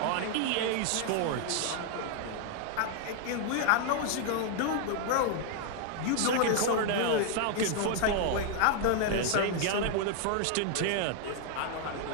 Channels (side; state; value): both; different; correlation 0.00